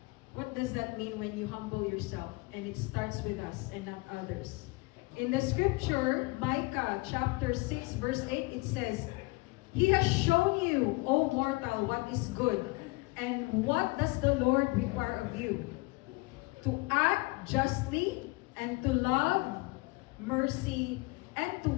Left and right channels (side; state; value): right; quieter; 24.8 dB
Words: What does that mean when you humble yourself? And it starts with us and not others. In the scripture, Micah chapter 6 verse 8, it says, He has shown you, O mortal, what is good. And what does the Lord require of you? To act justly and to love mercy and to